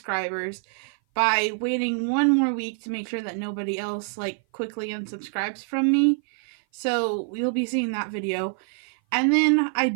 by waiting one more week to make sure that nobody else, quickly unsubscribes from me. So, we'll be seeing that video. And then, I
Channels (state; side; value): silent; left; 57 dB below the other